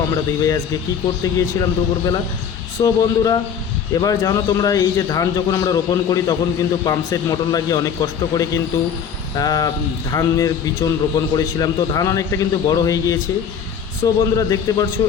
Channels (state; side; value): quieter; right; 7.5 dB